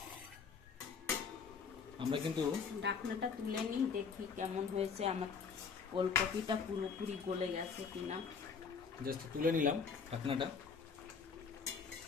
আমরা কিন্তু ঢাকনাটা তুলে নিই, দেখি কেমন হয়েছে। আমার ওলকপিটা পুরোপুরি গলে গেছে কিনা। জাস্ট তুলে নিলাম ঢাকনাটা।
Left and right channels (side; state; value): right; quieter; 5.8 dB